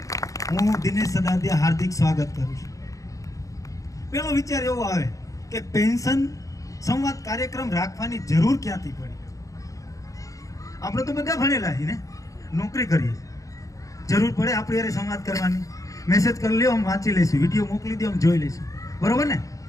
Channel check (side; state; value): right; late; 0.16 ms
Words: હું દિનેશ સદાદિયા હાર્દિક સ્વાગત કરું છું. પેલો વિચાર એવો આવે કે પેન્શન સંવાદ કાર્યક્રમ રાખવાની જરૂર ક્યાંથી પડી? આપણે તો બધા ભણેલા છીએ ને, નોકરી કરીએ, જરૂર પડે આપણે યારે સંવાદ કરવાની. મેસેજ કરી લ્યો, આમ વાંચી લઈશું, વિડીયો મોકલી દો, આમ જોઈ લઈશું, બરોબર ને?